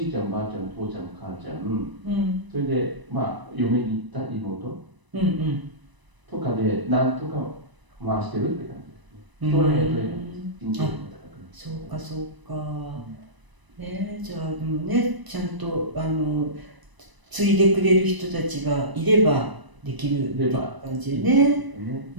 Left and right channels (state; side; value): late; left; 1.0 ms